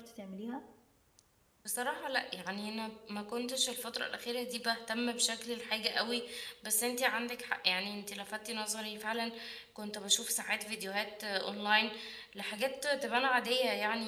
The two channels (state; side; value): identical; both; correlation 1.00